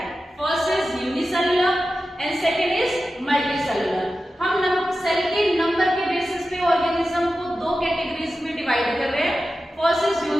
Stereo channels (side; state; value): both; normal; correlation 0.93